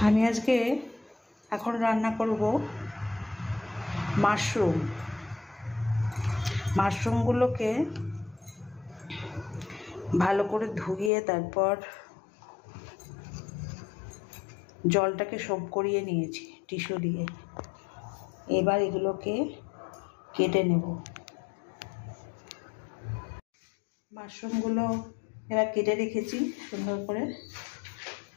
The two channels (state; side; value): drops out; right; at 11.1 s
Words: আমি আজকে এখন রান্না করব মাশরুমগুলোকে ভালো করে ধুয়ে তারপর জলটাকে সোপ করিয়ে নিয়েছি টিস্যু দিয়ে। এবার এগুলোকে কেটে নেব। মাশরুমগুলো এবার কেটে রেখেছি সুন্দর করে।